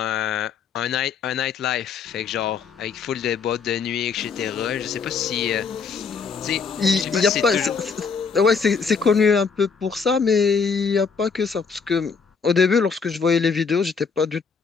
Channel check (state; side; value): quieter; right; 5.6 dB